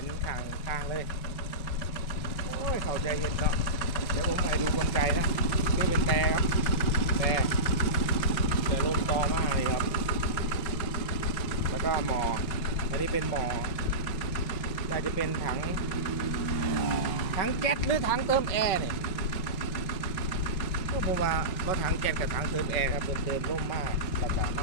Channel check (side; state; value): right; late; 5.3 ms